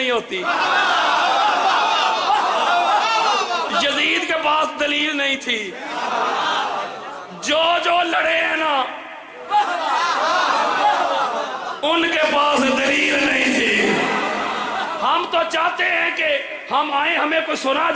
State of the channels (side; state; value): both; identical; correlation 1.00